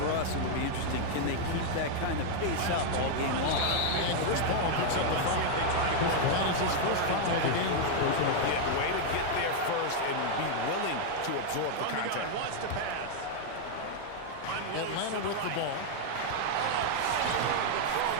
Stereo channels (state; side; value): different; both; correlation 0.00